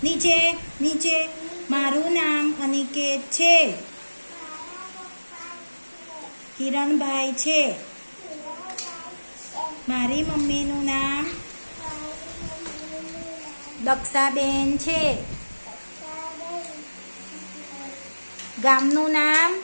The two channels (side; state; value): both; inverted; correlation -1.00